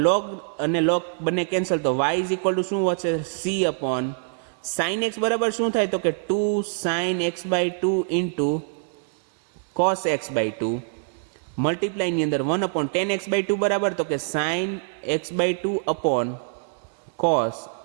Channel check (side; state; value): left; silent; digital silence